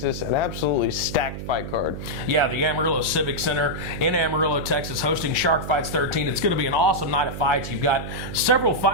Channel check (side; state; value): right; noise; hum, 8 dB below the sound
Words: An absolutely stacked fight card. Yeah, the Amarillo Civic Center in Amarillo, Texas, hosting Shark Fights 13. It's going to be an awesome night of fights. You've got several